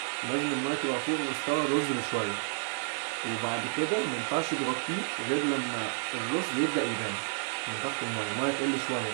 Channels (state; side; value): silent; left; 57 dB below the other